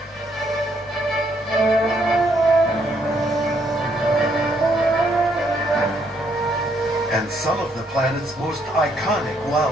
And some of the planet's most iconic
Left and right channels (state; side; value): normal; both; correlation 0.72